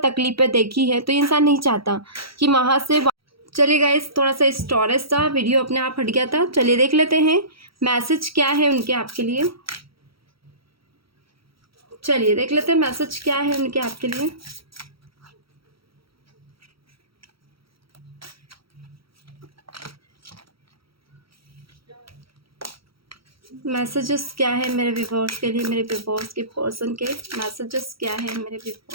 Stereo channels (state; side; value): late; left; 0.75 ms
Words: तकलीफें देखी है, तो ये इंसान नहीं चाहता कि वहाँ से चलिए गाइस, थोड़ा सा स्टोरेज था, वीडियो अपने आप हट गया था। चलिए देख लेते हैं मैसेज क्या है उनके आपके लिए। चलिए देख लेते हैं मैसेज क्या है उनके आपके लिए। मैसेजेस क्या है मेरे व्यूअर्स के लिए, मेरे व्यूअर्स के पर्सन के मैसेजेस क्या है मेरे